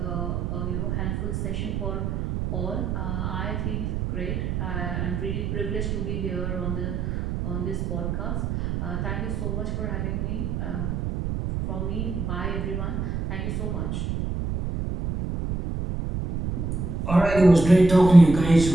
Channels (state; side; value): noise; right; rumble, 2 dB below the sound